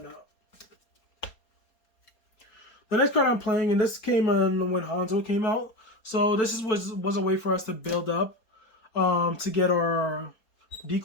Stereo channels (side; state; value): right; late; 4.3 ms